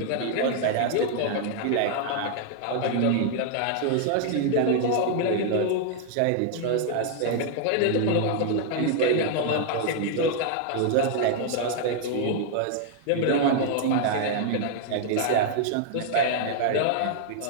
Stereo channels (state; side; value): different; both; correlation 0.00